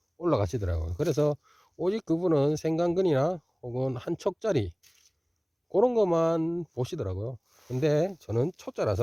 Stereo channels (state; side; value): identical; both; correlation 1.00